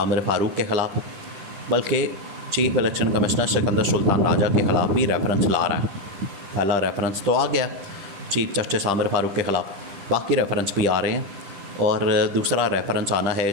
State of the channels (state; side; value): late; left; 10 ms